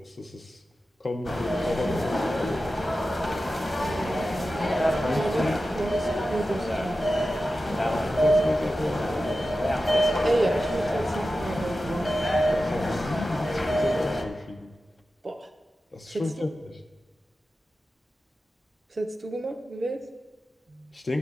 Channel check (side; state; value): both; normal; correlation 0.93